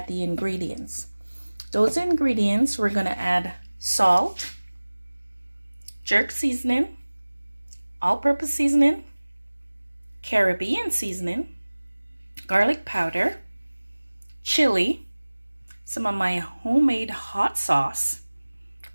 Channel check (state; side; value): inverted; both; correlation -1.00